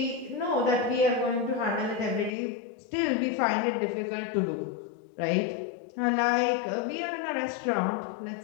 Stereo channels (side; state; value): right; drops out; at 2.3 s